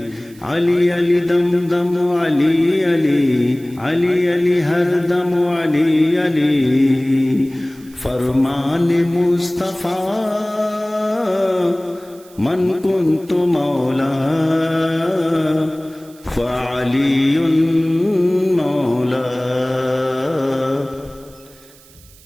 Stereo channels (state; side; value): noise; right; hiss, 25 dB below the sound